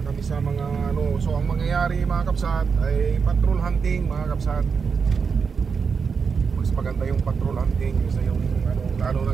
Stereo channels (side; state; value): left; quieter; 5.7 dB